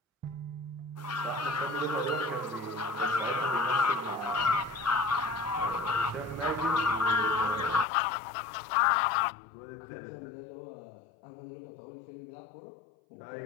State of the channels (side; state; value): right; drops out; at 7.9 s